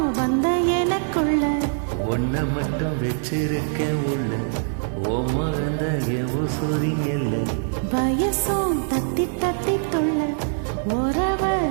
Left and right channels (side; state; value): left; silent; digital silence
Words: வந்த எனக்குள்ள ஒன்ன மட்டும் வச்சிருக்கேன் உள்ள ஓ மகந்த உசுரிங்கல்ல வயசும் தத்தி தத்தி தொல்ல உறவ